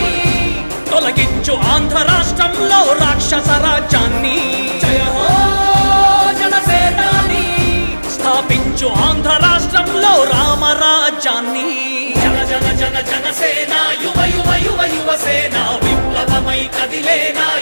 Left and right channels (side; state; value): both; inverted; correlation -1.00